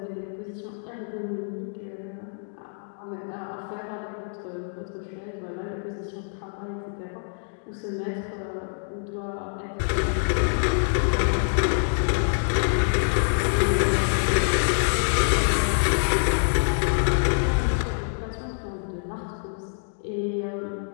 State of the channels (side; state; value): right; silent; digital silence